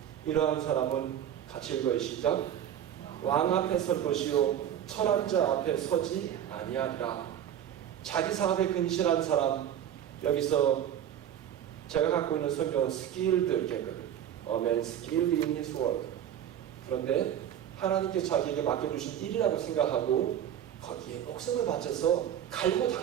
이러한 사람은 같이 읽어요. 시작. 왕 앞에 설 것이요 천한 자 앞에 서지 아니하리라. 자기 사업에 근실한 사람, 여기서 제가 갖고 있는 성경은 skilled 이렇게 했거든요. A man skilled in his work. 그런데 하나님께 자기에게 맡겨주신 일이라고 생각하고 거기에 목숨을 바쳐서 갈고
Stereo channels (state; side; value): quieter; left; 10.2 dB